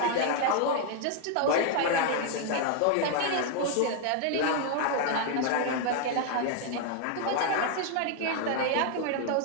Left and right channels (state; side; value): different; both; correlation 0.00